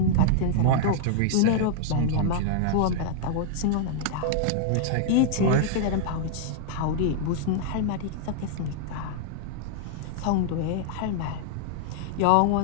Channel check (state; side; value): different; both; correlation -0.01